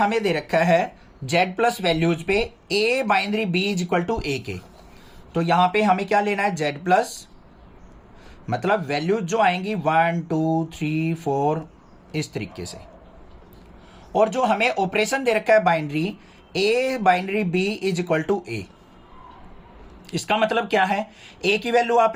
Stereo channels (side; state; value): both; identical; correlation 1.00